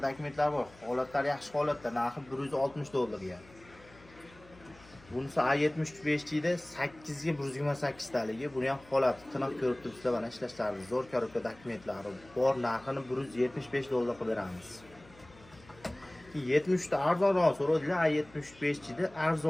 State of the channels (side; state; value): left; noise; hum, 24 dB below the sound